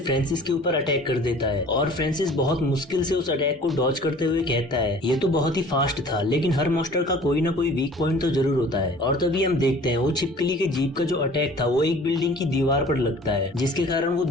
फ्रांसिस के ऊपर अटैक कर देता है। और फ्रांसिस बहुत मुश्किल से उस अटैक को डॉज करते हुए कहता है ये तो बहुत ही फास्ट था, लेकिन हर मॉन्स्टर का कोई ना कोई वीक पॉइंट तो जरूर होता है। और तभी हम देखते हैं वो छिपकली के जीप का जो अटैक था वो एक बिल्डिंग की दीवार पर लगता है, जिसके कारण वो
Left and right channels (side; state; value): both; normal; correlation 0.48